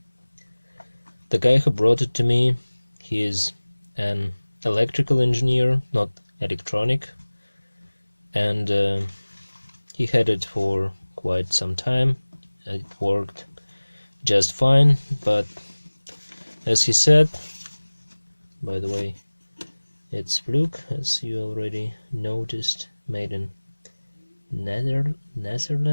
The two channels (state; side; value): inverted; both; correlation -1.00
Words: The guy who brought it to me, he is an electrical engineer, not electronic, and he had it for quite some time. It worked just fine, but as he said, by the way, it's Fluke, as you already noticed, made in